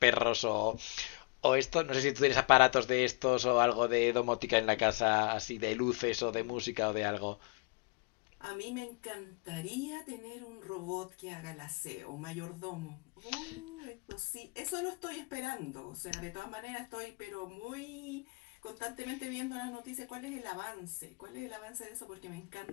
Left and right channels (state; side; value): quieter; right; 32.9 dB